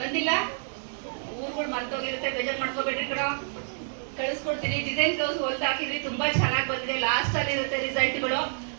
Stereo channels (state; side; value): silent; left; 59 dB below the other